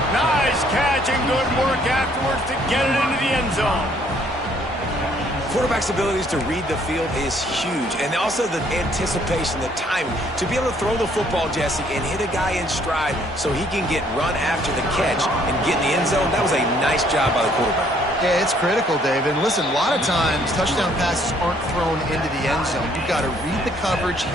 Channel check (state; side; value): normal; both; correlation 0.64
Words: Nice catch and good work afterwards to get it into the end zone. Quarterback's abilities to read the field is huge, and also the anticipation, the timing. To be able to throw the football, Jesse, and hit a guy in stride so he can get run after the catch and get in the end zone, that was a nice job by the quarterback. Yeah, it's critical, David. And listen, a lot of times touchdown passes aren't thrown into the end zone. You've got to read the coverage,